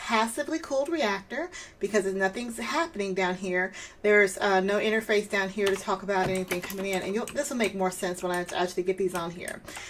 cooled reactor because nothing's happening down here. There's no interface down here to talk about anything coming in. And this will make more sense when I actually get these on here.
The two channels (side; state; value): both; identical; correlation 1.00